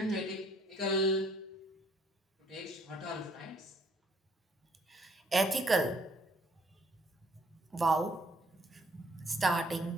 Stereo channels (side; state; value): both; normal; correlation 0.64